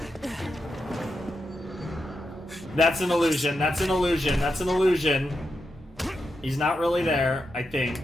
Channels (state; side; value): normal; both; correlation 0.86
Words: That's an illusion. That's an illusion. That's an illusion. He's not really there, I think.